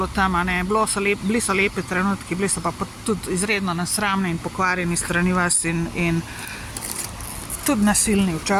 tam, a ne. Bili so lepi trenutki, bili so pa tudi izredno nesramni in pokvarjeni strani vas in tudi nasilni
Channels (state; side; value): identical; both; correlation 1.00